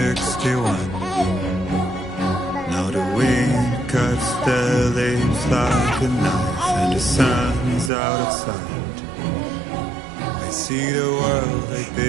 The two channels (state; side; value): drops out; left; at 7.9 s